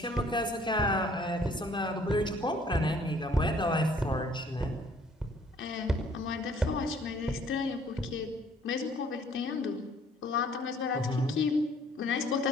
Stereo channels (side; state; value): both; normal; correlation 0.59